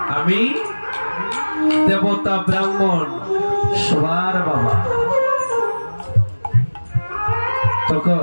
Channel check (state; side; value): inverted; both; correlation -1.00